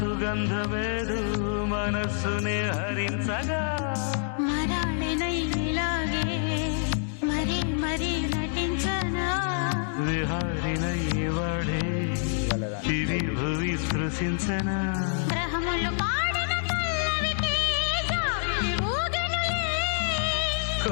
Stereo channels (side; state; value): right; silent; digital silence